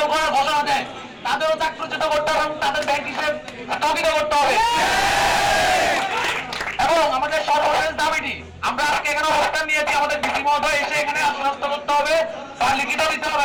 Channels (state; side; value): identical; both; correlation 1.00